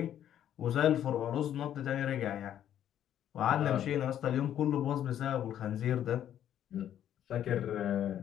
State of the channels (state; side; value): quieter; right; 10.6 dB